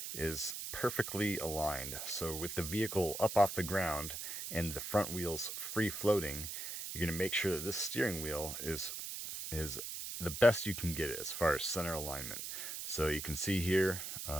is perfectly aligned. So with the vehicle up off the ground and the front wheels free floating, you're going to make sure that this steering wheel is the best you can get it as far as center alignment. So you can see here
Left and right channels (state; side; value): noise; right; hiss, 6 dB below the sound